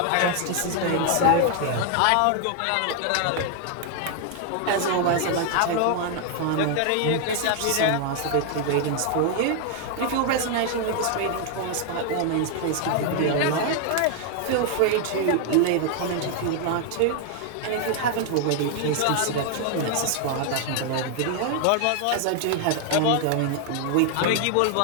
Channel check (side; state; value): both; different; correlation 0.00